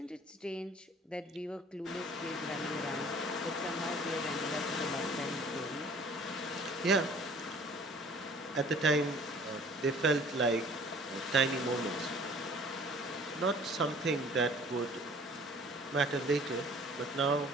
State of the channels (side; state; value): both; normal; correlation 0.51